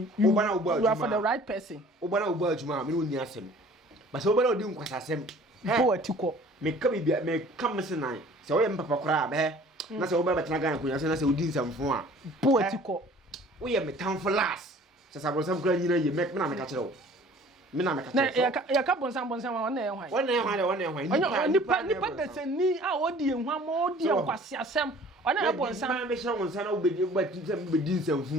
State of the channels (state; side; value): normal; both; correlation 0.50